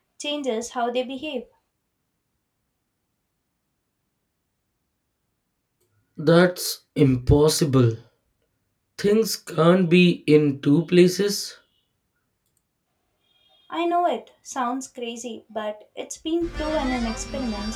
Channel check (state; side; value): identical; both; correlation 1.00